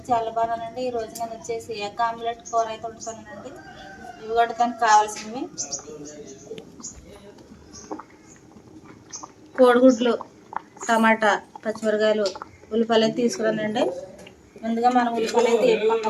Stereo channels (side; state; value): both; identical; correlation 1.00